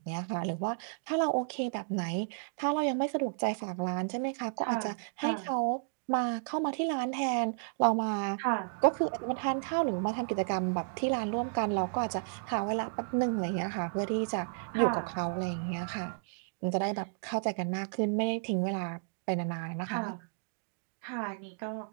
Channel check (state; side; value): silent; left; digital silence